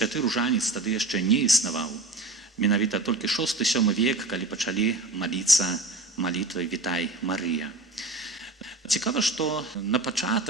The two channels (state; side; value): quieter; left; 3.2 dB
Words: ружанец тады яшчэ не існаваў. Менавіта толькі 6-7 век, калі пачалі маліцца молитвай «Вітай, Марыя». Цікава, што на